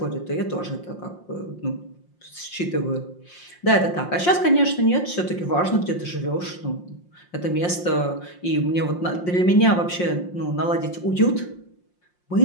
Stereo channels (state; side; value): late; right; 5.6 ms